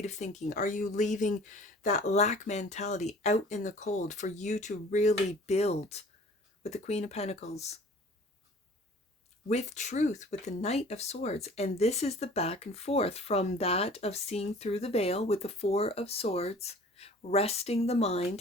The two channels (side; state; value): both; normal; correlation 0.48